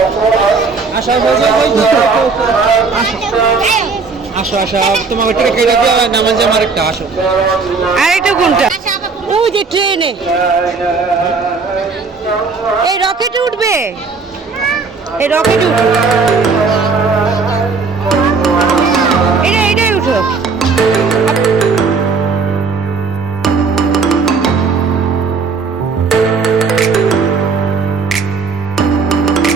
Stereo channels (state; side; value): quieter; left; 4.6 dB